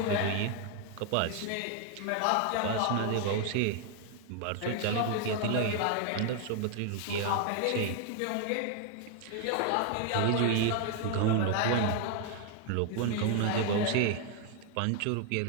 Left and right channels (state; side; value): different; both; correlation 0.00